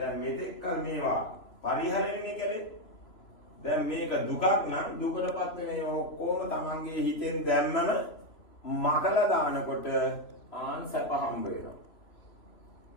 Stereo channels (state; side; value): late; right; 3.0 ms